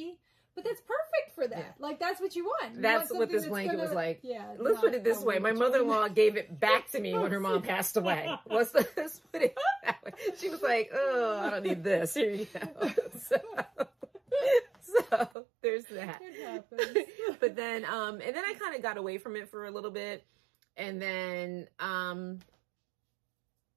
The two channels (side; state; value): left; drops out; at 15.3 s